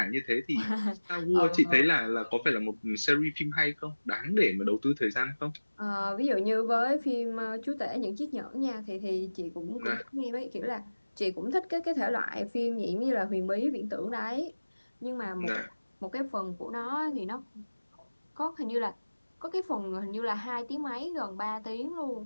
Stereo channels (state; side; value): inverted; both; correlation -1.00